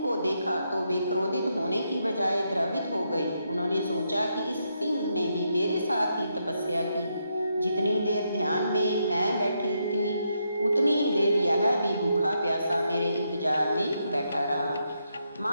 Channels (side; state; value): both; inverted; correlation -0.80